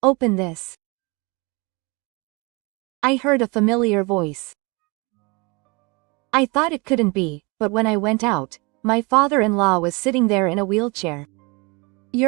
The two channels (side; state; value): left; quieter; 28.2 dB